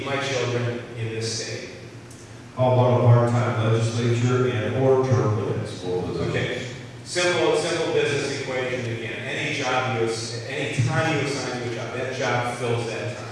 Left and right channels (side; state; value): both; identical; correlation 1.00